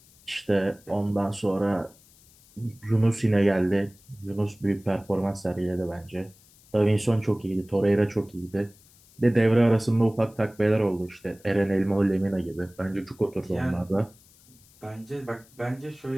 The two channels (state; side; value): noise; left; hiss, 27 dB below the sound